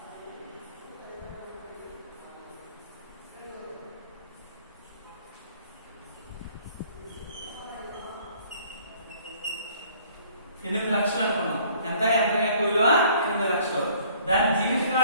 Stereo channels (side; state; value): both; inverted; correlation -0.57